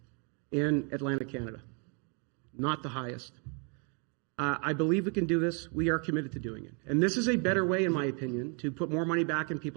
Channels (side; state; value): left; quieter; 37.1 dB